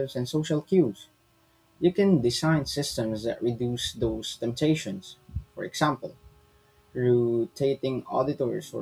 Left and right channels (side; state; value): both; identical; correlation 1.00